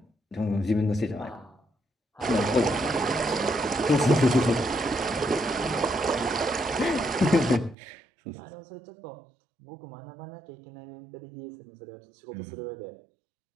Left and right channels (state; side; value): drops out; left; at 7.8 s